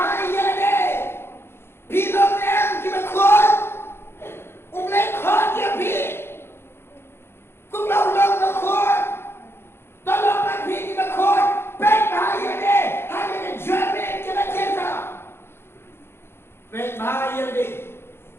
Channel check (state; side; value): late; right; 0.12 ms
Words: de pilong em ke bakhuid BLEI khot ya pi kum lau lau bakhuid tolong mak pi ke bakhuid pek bahaya de Pek bahaya deh,